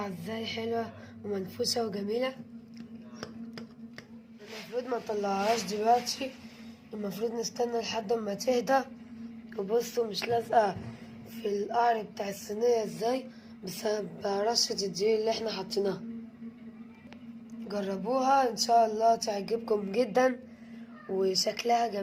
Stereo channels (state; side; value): identical; both; correlation 1.00